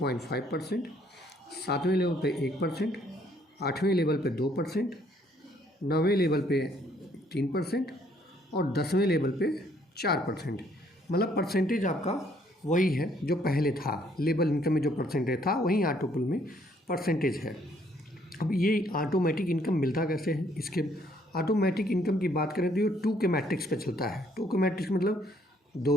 सातवें लेवल पे 1%, आठवें लेवल पे 2%, नौवें लेवल पे 3% और 10वें लेवल पे 4%। मतलब परसेंटेज आपका वही है जो पहले था। लेवल इनकम में जो परसेंटेज था वही ऑटोपुल में परसेंटेज है। अब ये ऑटोमेटिक इनकम मिलता कैसे है? इसके ऑटोमेटिक इनकम की बात करें तो ये 2 के मैट्रिक्स पे चलता है। 2 के मैट्रिक्स मतलब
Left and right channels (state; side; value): normal; both; correlation 0.66